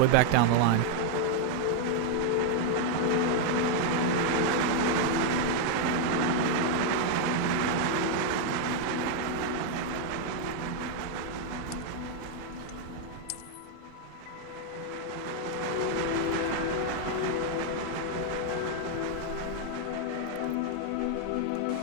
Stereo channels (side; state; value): both; different; correlation 0.00